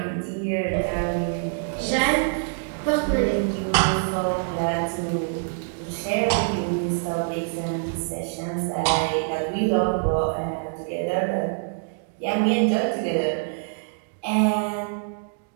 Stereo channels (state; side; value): silent; left; digital silence